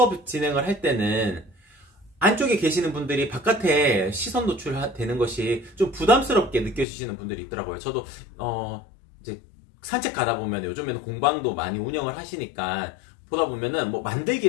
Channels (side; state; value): right; drops out; at 6.9 s